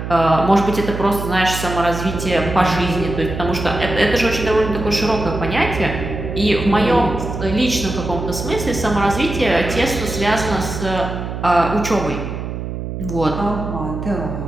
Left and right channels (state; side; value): noise; right; hum, 6 dB below the sound